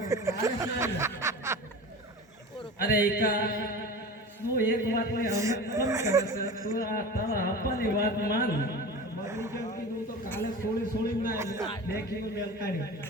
અરે એકા તું એક વાત ને અમે કમ કરે છે. તું આ તારા આપવાની વાત માન. બગડી કેમ કીધું તો કાલે સોળી ના દેખીને મેલ કાઢી.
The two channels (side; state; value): both; normal; correlation 0.33